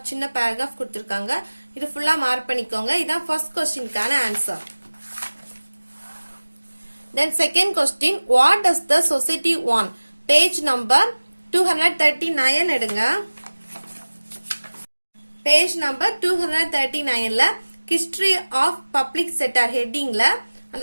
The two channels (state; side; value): inverted; both; correlation -1.00